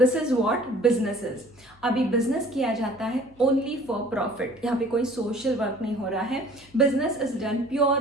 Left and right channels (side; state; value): left; noise; hum, 28 dB below the sound